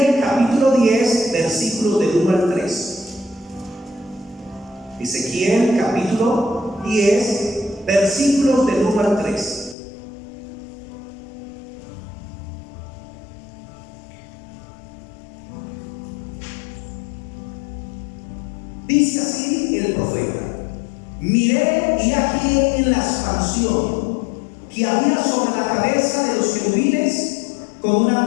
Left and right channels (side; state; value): right; drops out; at 9.8 s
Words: capítulo 10, versículos del 1 al 3. Ezequiel capítulo 10, versículos del 1 al 3. Dice así el profeta: miré y aquí en la expansión que había sobre la cabeza de los querubines con